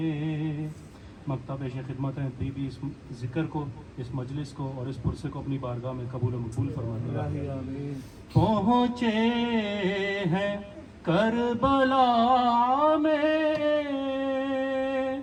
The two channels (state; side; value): identical; both; correlation 1.00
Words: مکتب پیش خدمت ہیں بھی اس ذکر کو، اس مجلس کو اور اس پرسے کو اپنی بارگاہ میں قبول و مقبول فرمائے. پہنچے ہیں کربلا میں